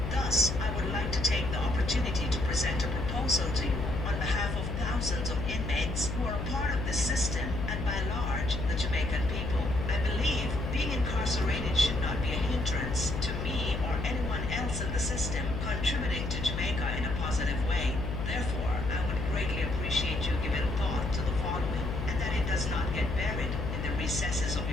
Thus, I would like to take the opportunity to present a proposal to you on behalf of thousands of inmates who are a part of this system and by large, the Jamaican people. I believe being incarcerated should not be a hindrance to me or anyone else in the system contributing to Jamaica in a positive way. Therefore, I would greatly appreciate you giving thought to the following and that it does not get buried in the recesses of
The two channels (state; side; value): noise; left; hum, 3 dB below the sound